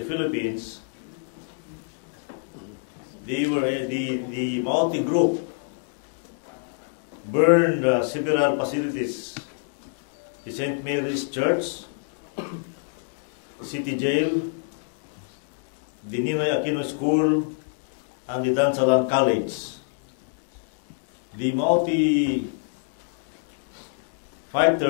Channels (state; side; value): silent; right; 61 dB below the other